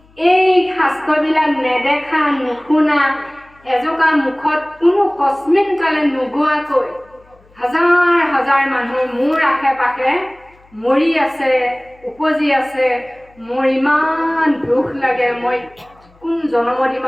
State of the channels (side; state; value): left; noise; hum, 30 dB below the sound